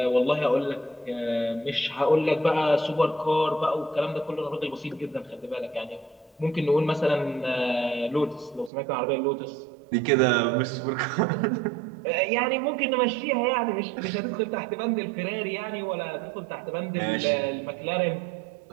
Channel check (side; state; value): left; drops out; at 8.7 s